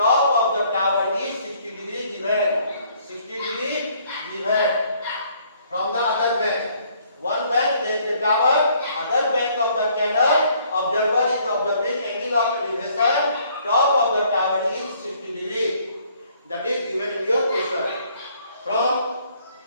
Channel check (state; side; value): inverted; both; correlation -0.63